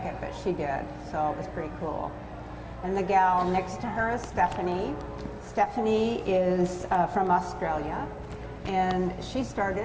but she did, so it was pretty cool. And the gal next to her is Stephanie. Stephanie is from Australia, and she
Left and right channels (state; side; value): identical; both; correlation 1.00